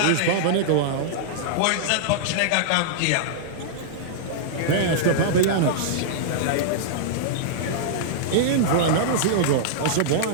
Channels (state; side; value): different; both; correlation -0.02